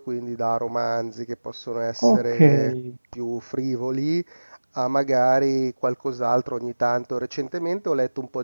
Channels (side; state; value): both; inverted; correlation -1.00